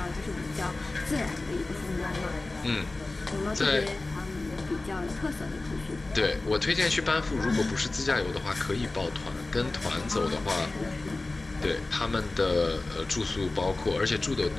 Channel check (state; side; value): quieter; right; 3.1 dB